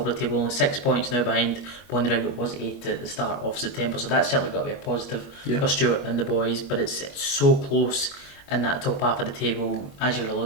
of the table, only 6 points now behind Bonnyrigg. It was 8 at the start of September, so that's certainly got to be a positive for Stuart and the boys. But it's so close in that top half of the table, as you're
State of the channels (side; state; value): right; late; 21 ms